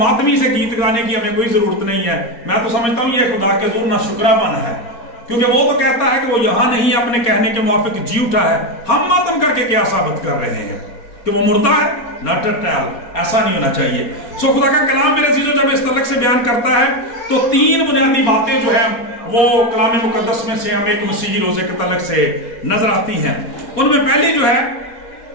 سے گیت گانے کی ہمیں کوئی ضرورت نہیں ہے. میں تو سمجھتا ہوں یہ خدا کے حضور ناشکرا پن ہے، کیونکہ وہ تو کہتا ہے کہ وہ یہاں نہیں اپنے کہنے کے موافق جی اٹھا ہے. ہم ماتم کر کے کیا ثابت کر رہے ہیں کہ وہ مردہ ہے؟ Not at all. ایسا نہیں ہونا چاہیے. سو خدا کا کلام میرے عزیزو جب اس تعلق سے بیان کرتا ہے تو 3 بنیادی باتیں جو ہیں وہ کلام مقدس میں سے ہمیں ایک مسیحی روزے کے تعلق سے نظر آتی ہیں. ان میں پہلی جو ہے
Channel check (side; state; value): right; late; 4.3 ms